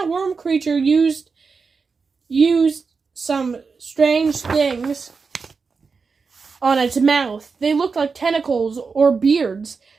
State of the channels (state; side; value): quieter; left; 4.9 dB